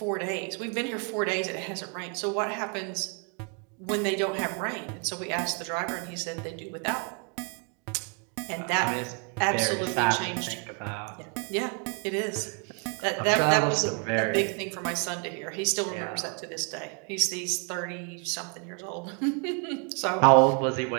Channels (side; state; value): left; quieter; 36.5 dB